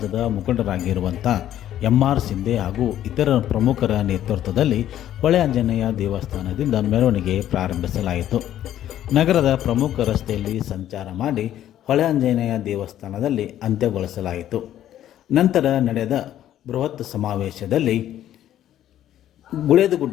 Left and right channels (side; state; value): right; quieter; 11.8 dB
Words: ಮುಖಂಡರಾಗಿರುವಂಥ MR ಸಿಂಧೆ ಹಾಗೂ ಇತರ ಪ್ರಮುಖರ ನೇತೃತ್ವದಲ್ಲಿ ಹೊಳೆ ಆಂಜನೇಯ ದೇವಸ್ಥಾನದಿಂದ ಮೆರವಣಿಗೆ ಪ್ರಾರಂಭಿಸಲಾಯಿತು. ನಗರದ ಪ್ರಮುಖ ರಸ್ತೆಯಲ್ಲಿ ಸಂಚಾರ ಮಾಡಿ ಹೊಳೆ ಆಂಜನೇಯ ದೇವಸ್ಥಾನದಲ್ಲಿ ಅಂತ್ಯಗೊಳಿಸಲಾಯಿತು. ನಂತರ ನಡೆದ ಬೃಹತ್ ಸಮಾವೇಶದಲ್ಲಿ